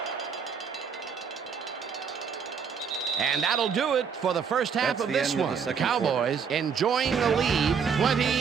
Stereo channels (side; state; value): left; quieter; 6.5 dB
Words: And that'll do it for the first half of this one. The Cowboys enjoying the lead